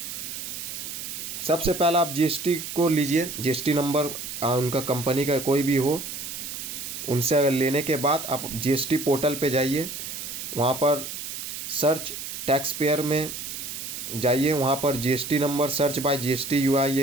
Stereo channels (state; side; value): noise; right; hiss, 7 dB below the sound